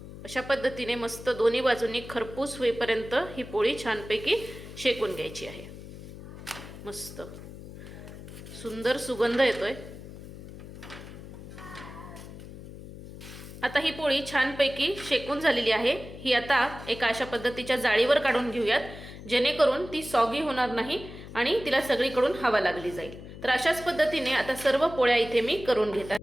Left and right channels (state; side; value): noise; left; hum, 14 dB below the sound